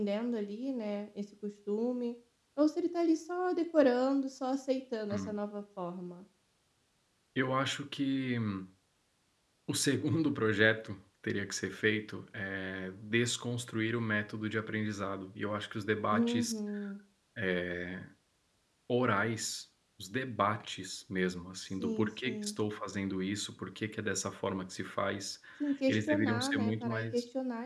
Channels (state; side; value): identical; both; correlation 1.00